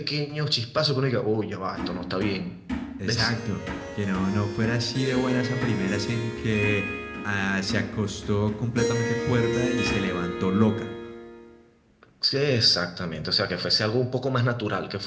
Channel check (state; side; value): identical; both; correlation 1.00